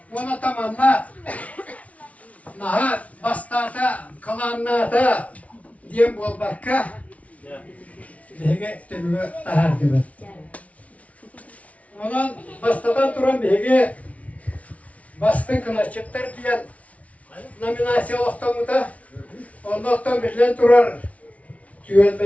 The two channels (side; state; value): right; late; 0.067 ms